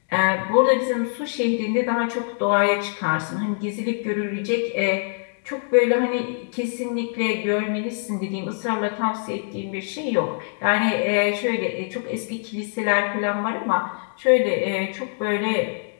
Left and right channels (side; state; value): right; silent; 63 dB below the other